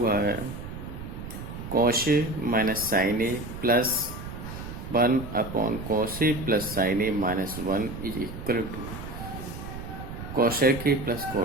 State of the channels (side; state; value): right; noise; rumble, 9 dB below the sound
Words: है cos A minus sign A plus 1/cos A plus sign A minus 1 is equal to cosec A plus